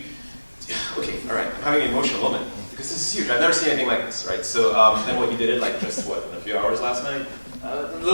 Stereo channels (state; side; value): inverted; both; correlation -1.00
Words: all right, I'm having an emotional moment because this is huge. I've never seen anything like this, right? So then what you did it like just in a few hours last night?